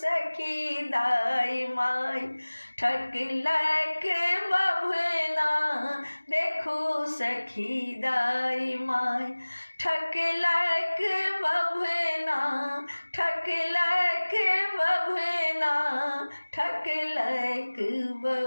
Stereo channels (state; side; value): inverted; both; correlation -1.00